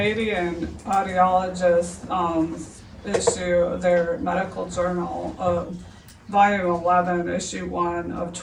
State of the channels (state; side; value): identical; both; correlation 1.00